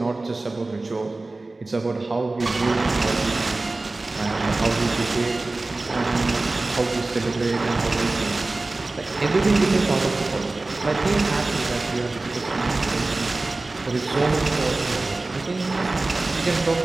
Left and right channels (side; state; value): left; quieter; 3.2 dB